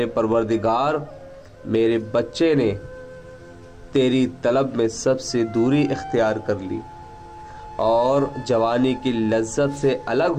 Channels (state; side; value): identical; both; correlation 1.00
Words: परवरदिगार, मेरे बच्चे ने तेरी तलब में सबसे दूरी इख्तियार कर ली और जवानी की लज्जत से अलग